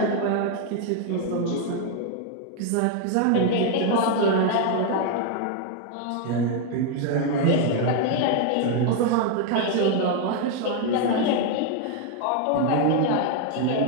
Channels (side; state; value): both; different; correlation 0.00